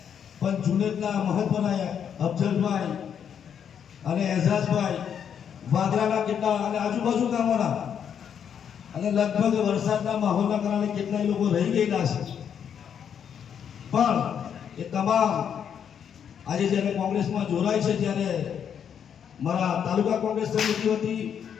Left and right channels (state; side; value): quieter; right; 8.2 dB